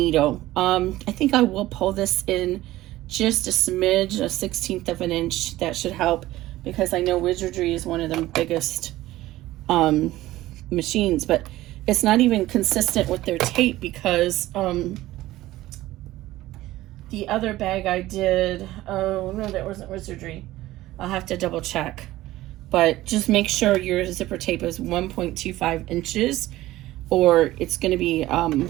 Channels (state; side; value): quieter; left; 16.3 dB